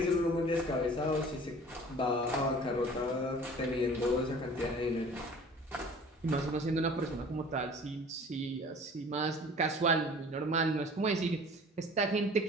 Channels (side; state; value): both; normal; correlation 0.46